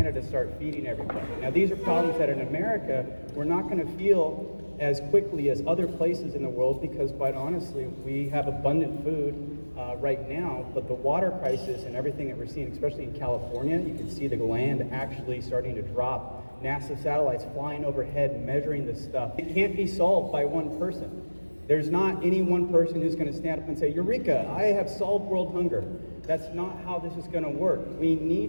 to start feeding everybody. Now these are problems that in America we're not going to feel as quickly as other places in the world because quite honestly we have abundant food right now, but the water crisis and everything that we're seeing, especially in California, you can see the land actually starting to drop. NASA satellites flying overhead measuring this stuff. It can't be solved by one person. There's not any one person who's going to stand up and say, Eureka, I have solved world hunger. That's not how this is going to work. We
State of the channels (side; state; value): both; inverted; correlation -1.00